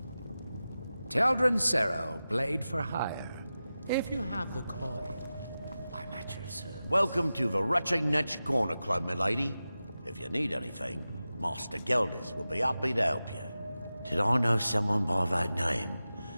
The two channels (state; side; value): inverted; both; correlation -0.94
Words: Teldrin Sero, blade for hire. If you have the coin, I'm at your service. Welcome to the Rutching Netch Corner Club, milady. If you need anything, Master Geldis will be happy to help you. Did I know someone by that name?